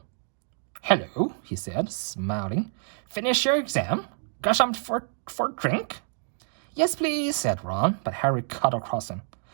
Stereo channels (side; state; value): left; silent; 58 dB below the other